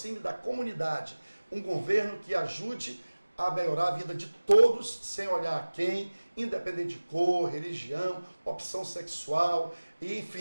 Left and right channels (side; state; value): both; inverted; correlation -1.00